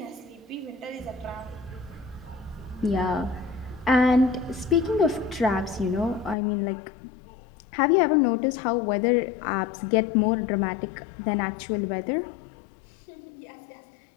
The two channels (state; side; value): drops out; right; at 6.4 s